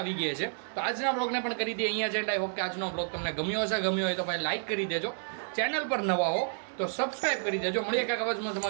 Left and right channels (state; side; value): silent; left; digital silence